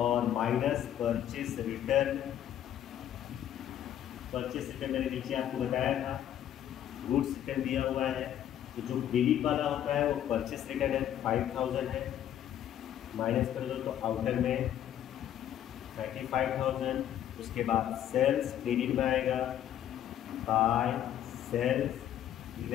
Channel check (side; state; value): right; quieter; 10.9 dB